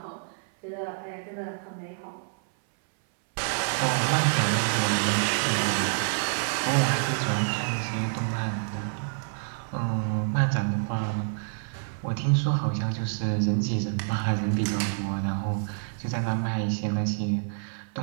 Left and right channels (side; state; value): left; silent; 60 dB below the other